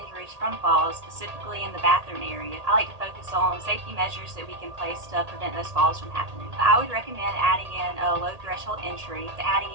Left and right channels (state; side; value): late; left; 1.8 ms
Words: from falls, specifically in the bathroom area. I like to focus on safety measures that we can place to prevent those falls from happening. I would recommend adding in a low threshold entry, adding